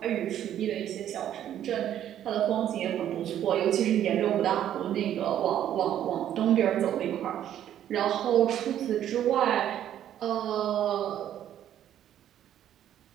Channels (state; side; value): quieter; left; 10.9 dB